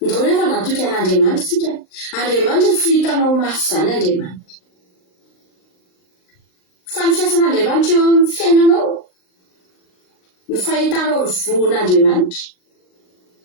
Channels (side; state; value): right; late; 39 ms